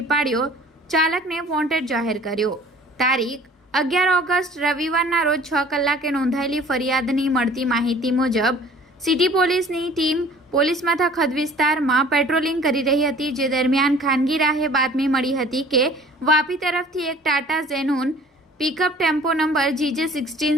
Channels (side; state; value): both; normal; correlation 0.50